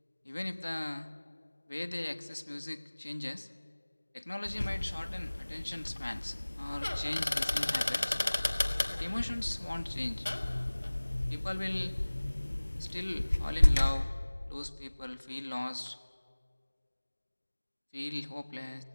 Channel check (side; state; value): both; inverted; correlation -1.00